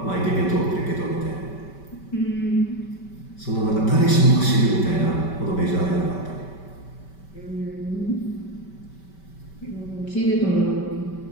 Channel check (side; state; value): right; late; 5.2 ms